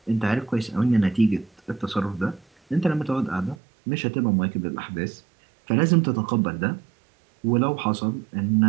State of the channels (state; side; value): drops out; left; at 3.6 s